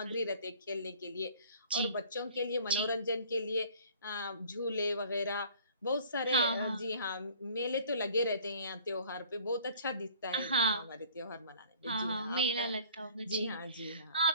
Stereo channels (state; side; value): inverted; both; correlation -0.52